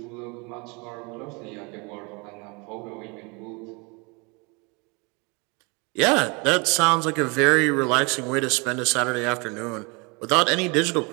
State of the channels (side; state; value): left; quieter; 29.7 dB